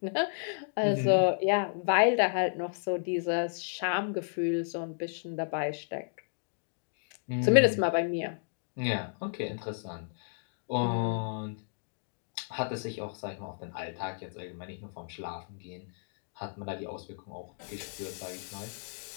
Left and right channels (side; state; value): right; silent; digital silence